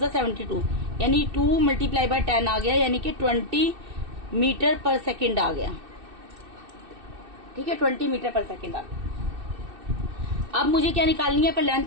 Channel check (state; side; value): late; left; 2.6 ms